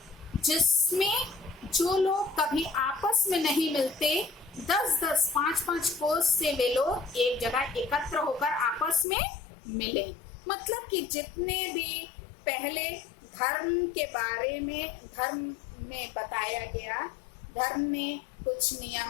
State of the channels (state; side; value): drops out; right; at 9.1 s